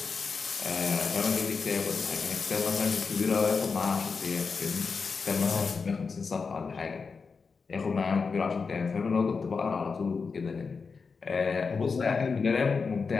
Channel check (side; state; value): right; quieter; 5.0 dB